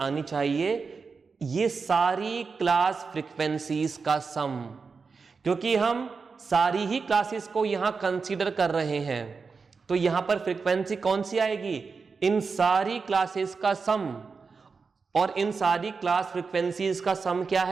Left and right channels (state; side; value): quieter; left; 4.9 dB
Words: चाहिए ये सारी क्लास फ्रीक्वेंसीज का सम, क्योंकि हम सारी ही क्लासेस को यहां कंसीडर कर रहे हैं। तो यहां पर फ्रीक्वेंसी कौन सी आएगी? इन सारी क्लासेस का सम, और इन सारी क्लास फ्रीक्वेंसीज का सम क्या